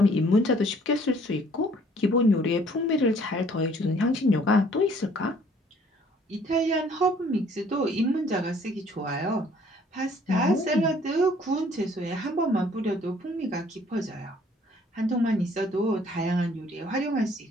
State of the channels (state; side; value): normal; both; correlation 0.58